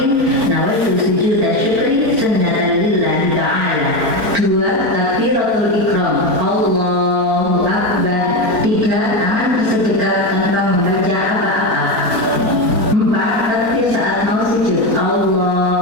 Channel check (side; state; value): left; late; 4.4 ms